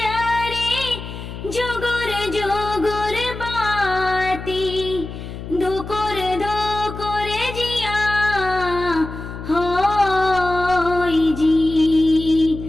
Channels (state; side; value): noise; left; hum, 10 dB below the sound